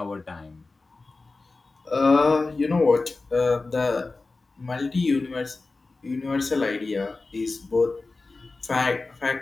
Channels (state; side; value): quieter; right; 3.6 dB